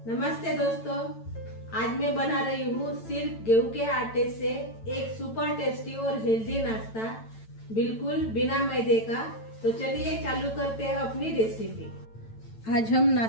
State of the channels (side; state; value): right; late; 9.0 ms